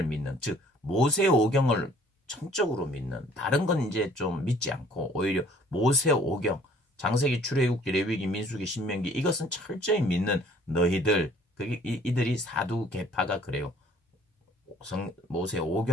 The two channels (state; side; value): normal; both; correlation 0.56